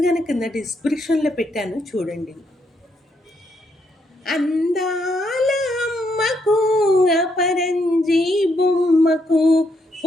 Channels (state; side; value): normal; both; correlation 0.76